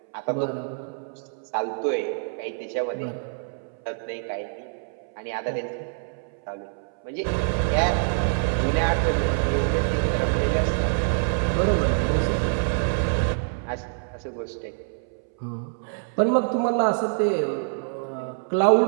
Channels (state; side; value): silent; left; 61 dB below the other